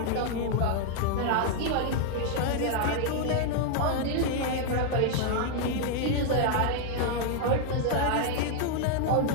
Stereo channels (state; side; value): different; both; correlation 0.00